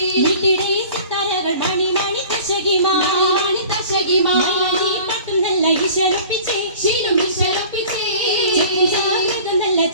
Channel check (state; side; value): inverted; both; correlation -0.45